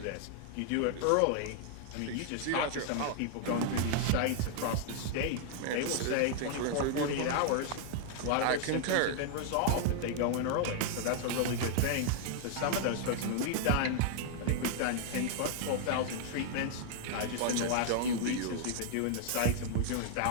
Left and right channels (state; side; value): different; both; correlation 0.00